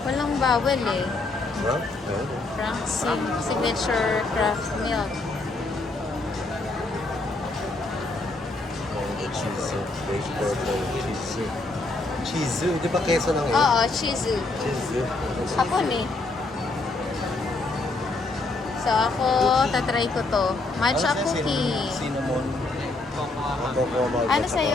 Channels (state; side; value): quieter; right; 3.2 dB